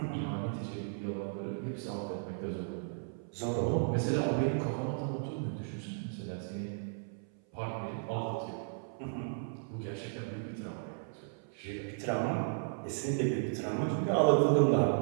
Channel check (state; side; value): silent; left; 55 dB below the other